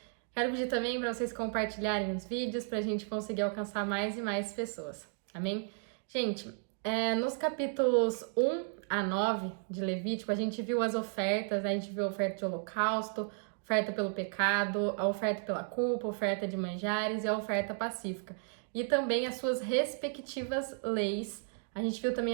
Quero pedir também para vocês compartilharem os vídeos para a gente conseguir alcançar mais e mais pessoas. Amém? Gente, nos capítulos 1 a 9 de Levítico, a gente viu as ofertas, a gente viu a oferta de holocausto, oferta pelo pecado, a oferta pela culpa, a oferta de manjares e a oferta pacífica. E também as suas respectivas leis. A gente viu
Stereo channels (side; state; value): left; silent; 55 dB below the other